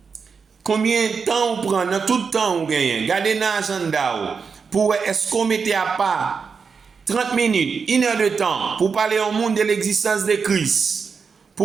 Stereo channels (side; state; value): left; quieter; 5.6 dB